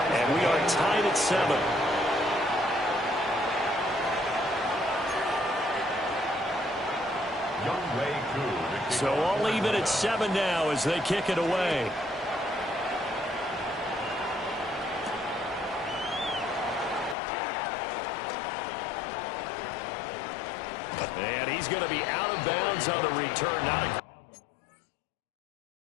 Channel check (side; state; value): right; drops out; at 17.2 s